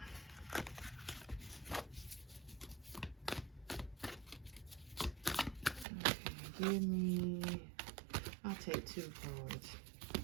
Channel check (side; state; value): left; drops out; at 5.9 s